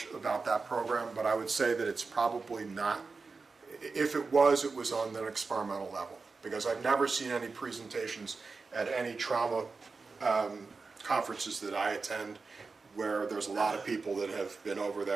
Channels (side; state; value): left; quieter; 4.3 dB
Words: about that program, but I would say that it's probably not. If it was on an experimental level, because I've never seen any presentations at any trauma conferences that I attend where there's a lot of people that have been over